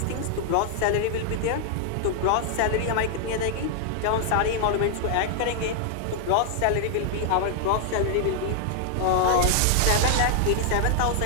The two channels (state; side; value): different; both; correlation -0.01